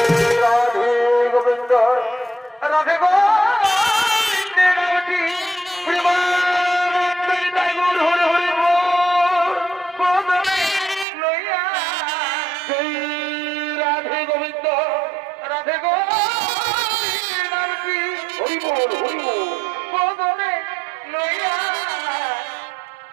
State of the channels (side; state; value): left; drops out; at 11.1 s